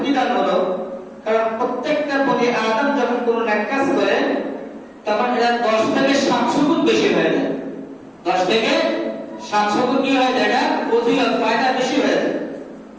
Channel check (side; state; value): both; identical; correlation 1.00